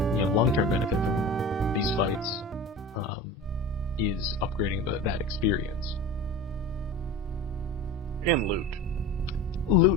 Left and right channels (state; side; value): normal; both; correlation 0.34